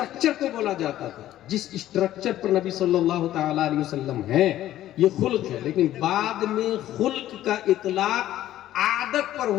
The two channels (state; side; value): quieter; right; 13.4 dB